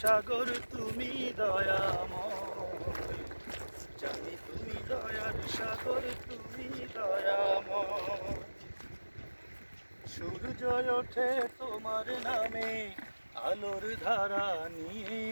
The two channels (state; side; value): inverted; both; correlation -1.00